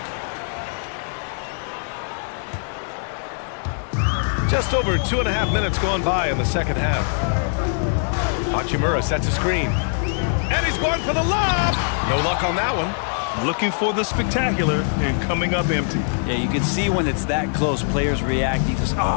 it. Just over 2.5 minutes gone by in the second half. Hachimura sets a screen. And he's going for the lob. No luck on that one. Looking for the spectacular and coming up empty. Yeah, you can see when it's that close, players react. You just,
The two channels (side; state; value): right; silent; digital silence